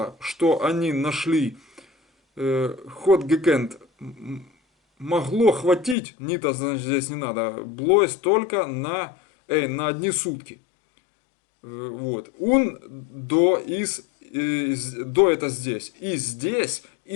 что они нашли, ход гекент, могло хватить, нита, значит, здесь не надо, блойс только на одни сутки. Вот. Он до это здесь. И здесь,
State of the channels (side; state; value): right; drops out; at 6.0 s